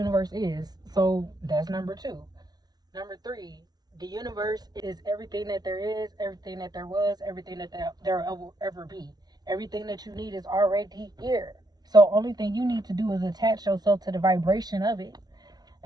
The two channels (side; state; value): left; late; 0.19 ms